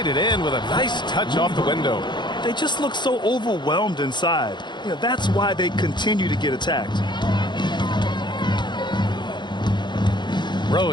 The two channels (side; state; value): right; late; 0.22 ms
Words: it in with a nice touch off the window. They just look so overwhelmed inside. You know, that's why they continue to get attacked.